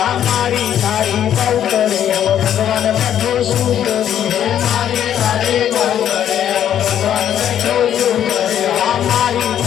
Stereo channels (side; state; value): right; quieter; 10.2 dB